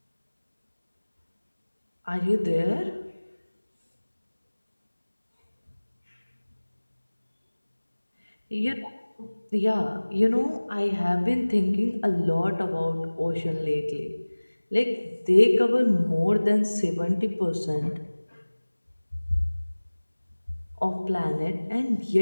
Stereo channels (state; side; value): inverted; both; correlation -1.00